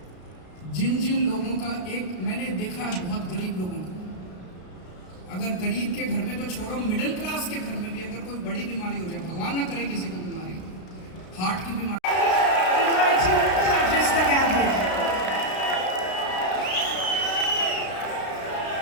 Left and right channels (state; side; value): late; right; 32 ms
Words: जिन जिन लोगों का, एक मैंने देखा है बहुत गरीब लोगों को, अगर गरीब के घर में तो छोड़ो, मिडिल क्लास के घर में भी अगर कोई बड़ी बीमारी हो जाए, भगवान ना करे किसी को बीमारी, हार्ट की बीमारी,